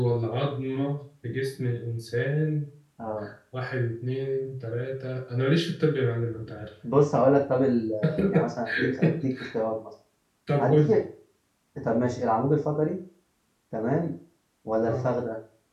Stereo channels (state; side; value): identical; both; correlation 1.00